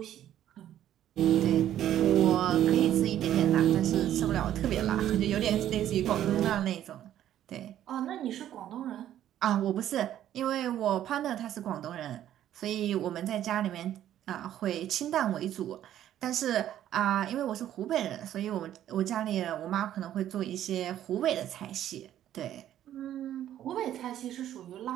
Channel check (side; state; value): left; quieter; 11.7 dB